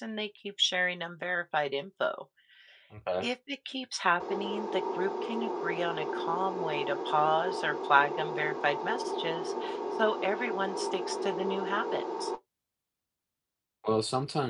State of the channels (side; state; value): both; identical; correlation 1.00